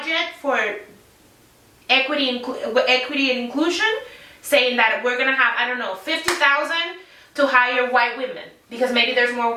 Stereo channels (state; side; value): identical; both; correlation 1.00